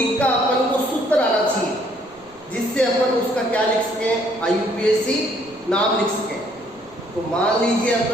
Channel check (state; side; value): noise; right; rumble, 28 dB below the sound